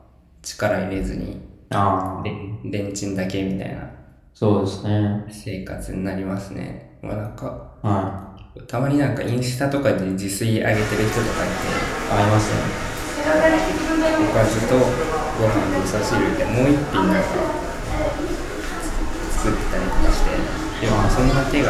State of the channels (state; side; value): identical; both; correlation 1.00